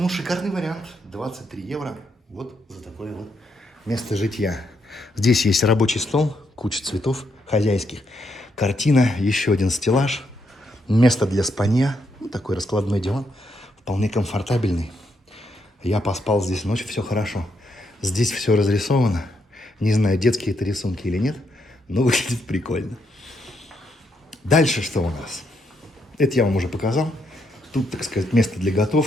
шикарный вариант. 23 евро вот за такое вот место житья. Здесь есть рабочий стол, куча цветов хозяйских, картина, еще один стеллаж, место для спанья, ну, такой раскладной диван, вполне комфортабельный. Я поспал здесь ночь, все хорошо. Здесь все разрисовано. Не знаю, детские это рисунки или нет, но выглядит прикольно. Дальше что у нас? Это я вам уже показал. Тут, так сказать, место для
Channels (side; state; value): both; normal; correlation 0.78